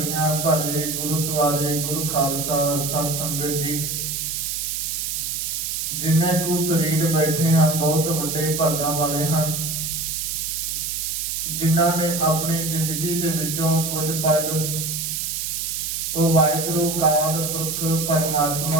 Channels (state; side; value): noise; right; hiss, 2 dB below the sound